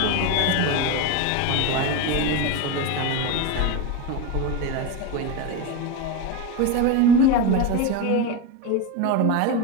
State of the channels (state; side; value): different; both; correlation 0.05